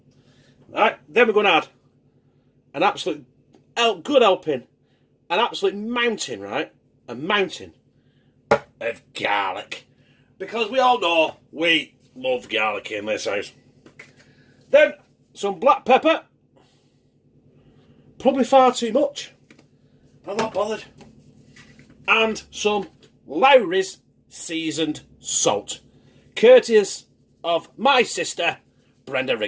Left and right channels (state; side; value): identical; both; correlation 1.00